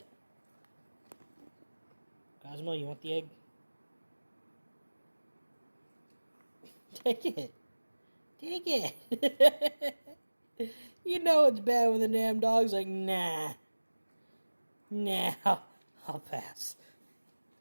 Cosmo, you want the egg? Take it. Take it. You know it's bad when the damn dog's like, nah. Nah, I'll pass.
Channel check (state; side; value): inverted; both; correlation -1.00